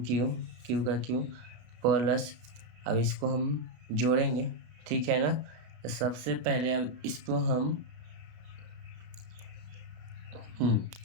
का Q प्लस, अब इसको हम जोड़ेंगे, ठीक है ना। तो सबसे पहले अब इसको हम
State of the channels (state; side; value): late; left; 33 ms